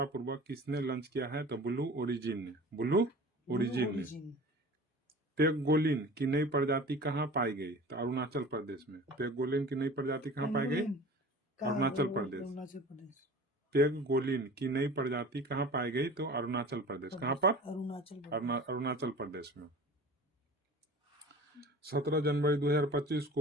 किसने लॉन्च किया है? तो ब्लू ओरिजिन ने। ब्लू ओरिजिन ने। पेगोलिन की नई प्रजाति कहाँ पाई गई? तो अरुणाचल प्रदेश में। पेगोलिन की नई प्रजाति कहाँ पाई गई? अरुणाचल प्रदेश। पेगोलिन की नई प्रजाति कहाँ पाई गई? तो अरुणाचल प्रदेश। कहाँ पर? अरुणाचल प्रदेश में। 17 जनवरी 2025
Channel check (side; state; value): both; normal; correlation 0.41